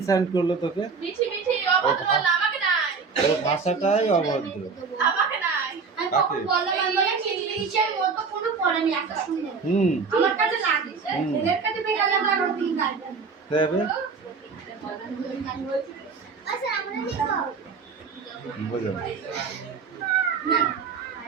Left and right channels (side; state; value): left; quieter; 5.1 dB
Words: করলো তোকে? ওর ভাষাটাই অভদ্র। কাকে? হুম দেবে বুঝো।